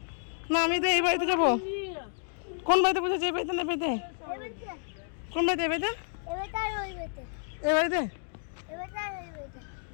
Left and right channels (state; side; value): silent; right; 58 dB below the other